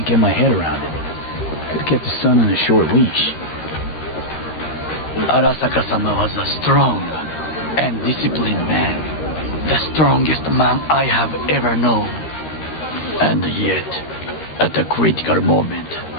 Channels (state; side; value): late; right; 13 ms